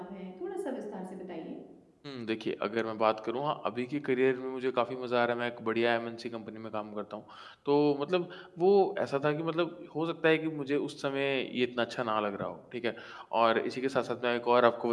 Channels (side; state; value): both; identical; correlation 1.00